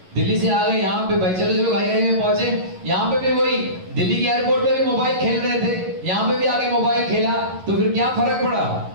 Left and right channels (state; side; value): late; left; 11 ms